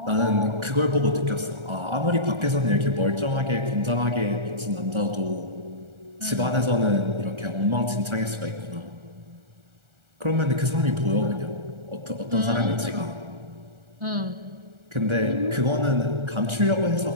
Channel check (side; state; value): left; late; 1.4 ms